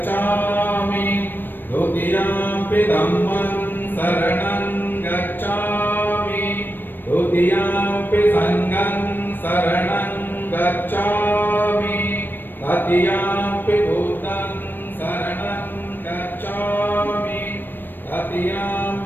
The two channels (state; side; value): late; right; 0.094 ms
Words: ದ್ವಿತೀಯಂಪಿ ಧಮ್ಮಂ ಶರಣಂ ಗಚ್ಛಾಮಿ ದ್ವಿತೀಯಂಪಿ ಸಂಘಂ ಶರಣಂ ಗಚ್ಛಾಮಿ ತೃತೀಯಂಪಿ ಬುದ್ಧಂ ಶರಣಂ ಗಚ್ಛಾಮಿ